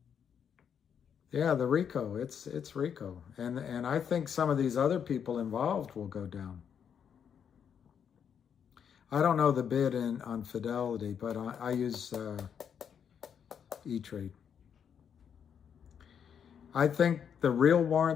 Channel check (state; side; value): quieter; right; 7.8 dB